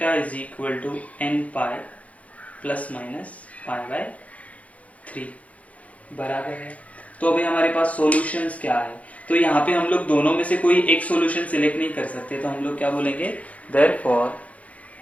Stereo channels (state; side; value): late; right; 0.067 ms